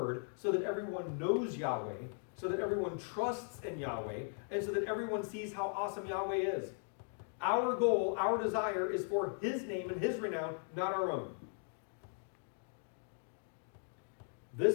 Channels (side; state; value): right; silent; 52 dB below the other